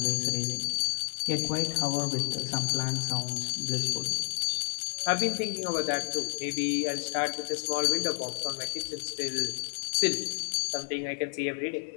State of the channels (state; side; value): silent; right; 58 dB below the other